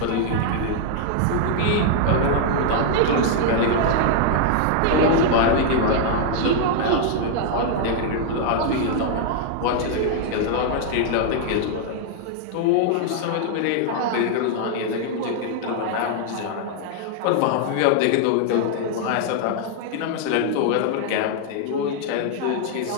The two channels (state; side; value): different; both; correlation 0.00